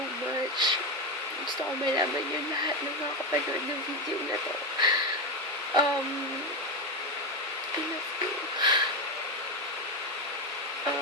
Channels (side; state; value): both; normal; correlation 0.12